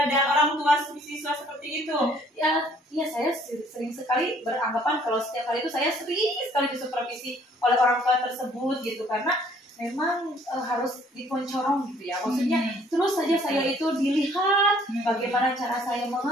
orang tua siswa seperti itu? Ya, saya sering sekali beranggapan kalau setiap hari itu saya sering sekali disupervisi oleh orang tua tersebut gitu, karena memang harus diponcorong gitu ya. Maksudnya terus saja saya itu dilihat bagaimana cara saya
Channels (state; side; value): normal; both; correlation 0.60